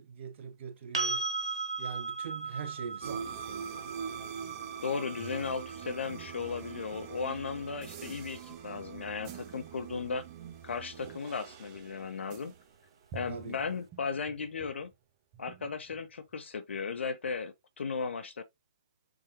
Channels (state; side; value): inverted; both; correlation -0.49